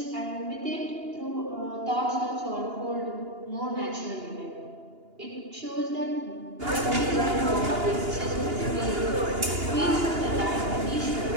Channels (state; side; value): late; left; 2.8 ms